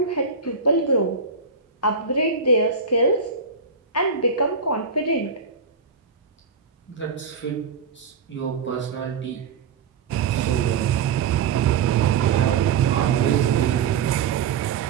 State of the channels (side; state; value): left; quieter; 5.4 dB